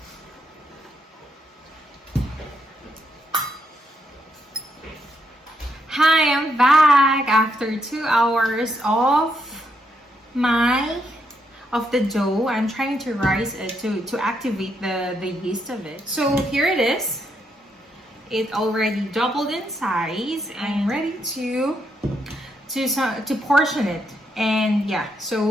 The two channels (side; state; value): both; normal; correlation 0.77